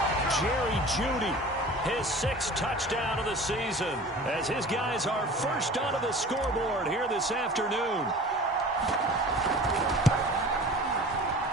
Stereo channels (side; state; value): both; normal; correlation 0.41